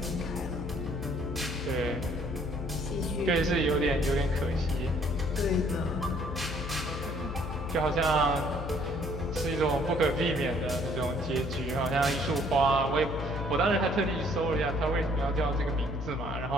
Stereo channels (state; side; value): noise; left; hum, 6 dB below the sound